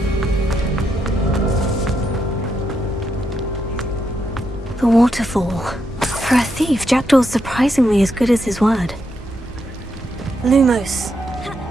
to fall. For a thief, Jackdaw's surprisingly as good as his word. Lumos.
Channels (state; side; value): normal; both; correlation 0.81